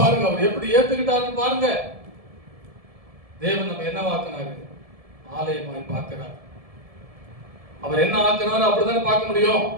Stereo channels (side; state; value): left; late; 1.7 ms